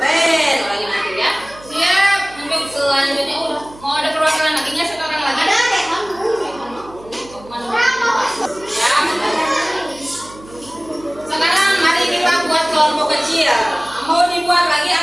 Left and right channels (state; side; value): noise; right; hum, 21 dB below the sound